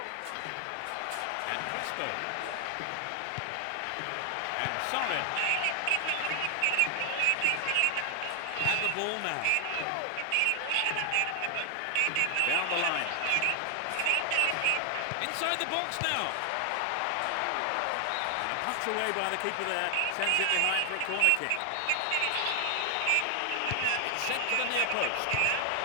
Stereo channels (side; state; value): both; different; correlation 0.00